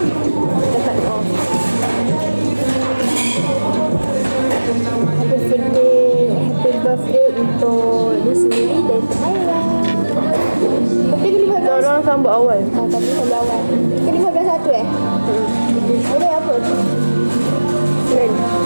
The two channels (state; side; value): inverted; both; correlation -1.00